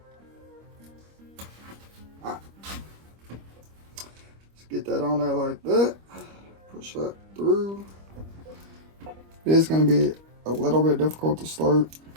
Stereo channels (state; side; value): late; left; 25 ms